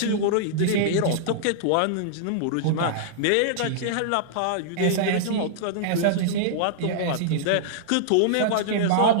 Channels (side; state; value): both; different; correlation -0.02